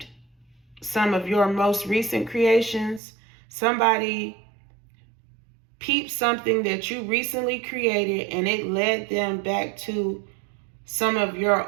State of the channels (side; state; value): left; drops out; at 3.0 s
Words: some of your most recent creations. Somebody peeped something that you recently created, and it led them back to some of